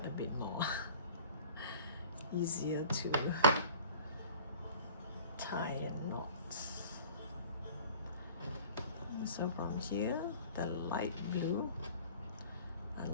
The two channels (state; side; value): inverted; both; correlation -0.46